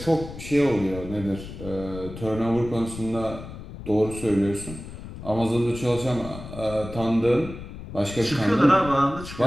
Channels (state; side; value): noise; left; rumble, 12 dB below the sound